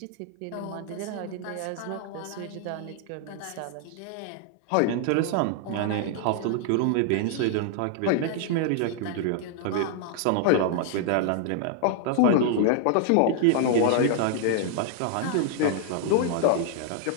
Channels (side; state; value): both; different; correlation 0.00